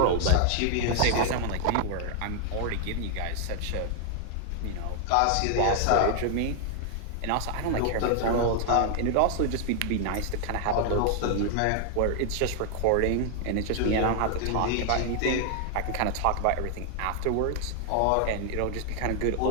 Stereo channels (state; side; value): different; both; correlation 0.00